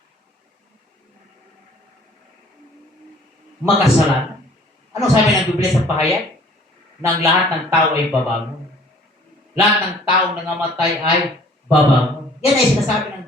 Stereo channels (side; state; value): both; normal; correlation 0.54